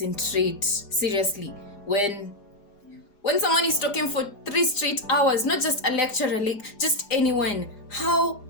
seriously, when someone is talking for 3 straight hours, not just a lecturer, like just anyone.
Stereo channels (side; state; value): right; late; 4.9 ms